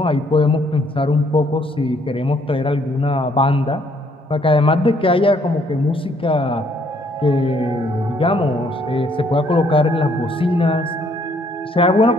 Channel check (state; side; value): normal; both; correlation 0.66